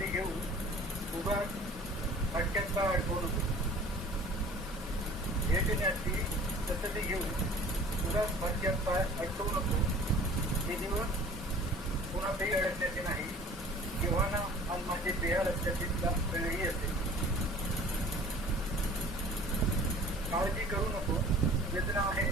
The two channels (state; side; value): normal; both; correlation 0.47